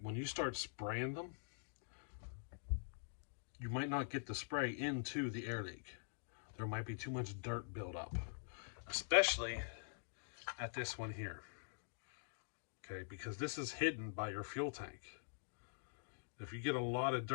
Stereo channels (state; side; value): silent; right; digital silence